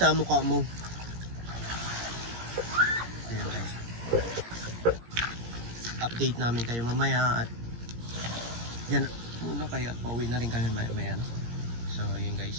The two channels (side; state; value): left; late; 17 ms